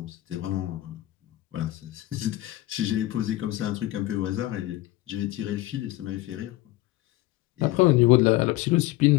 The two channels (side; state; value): right; quieter; 17.0 dB